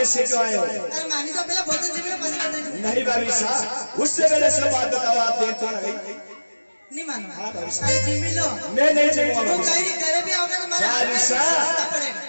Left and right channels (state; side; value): inverted; both; correlation -1.00